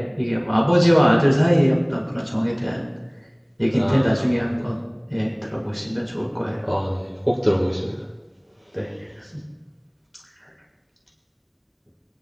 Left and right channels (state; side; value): identical; both; correlation 1.00